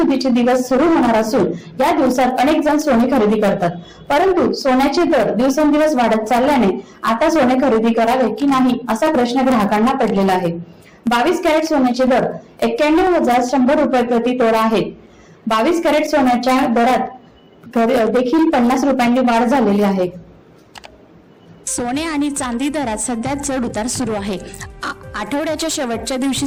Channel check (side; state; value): both; identical; correlation 1.00